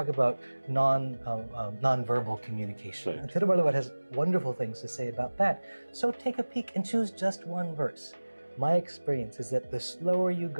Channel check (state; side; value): inverted; both; correlation -1.00